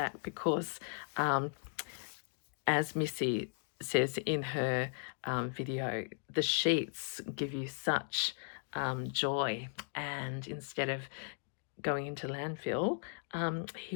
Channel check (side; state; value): right; silent; 53 dB below the other